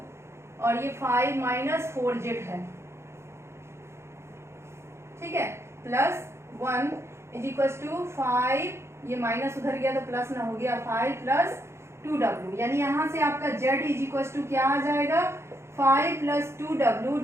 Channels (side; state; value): left; late; 0.13 ms